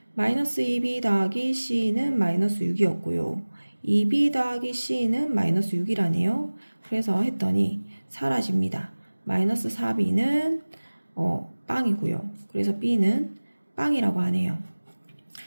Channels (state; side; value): inverted; both; correlation -1.00